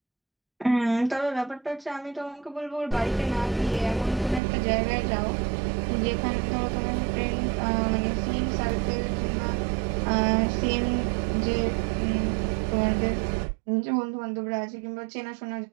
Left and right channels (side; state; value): left; drops out; at 4.4 s